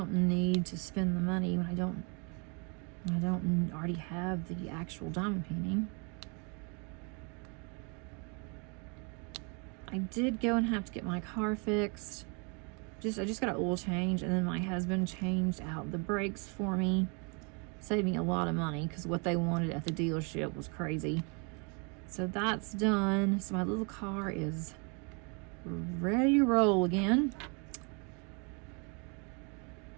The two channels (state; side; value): quieter; left; 34.3 dB